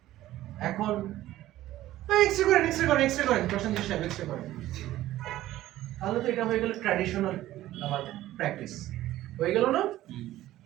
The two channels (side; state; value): left; quieter; 14.8 dB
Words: এখন এক্সরে করেন প্রসেনজিৎ সাহেব, এক্সরে করেন। তাহলে তো এটা হয়ে গেল ট্র্যাডিশনাল আমার প্র্যাকটিস, হয়ে গেল না?